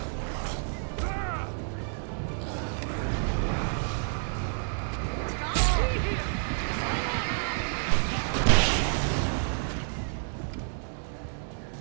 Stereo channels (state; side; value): silent; left; 58 dB below the other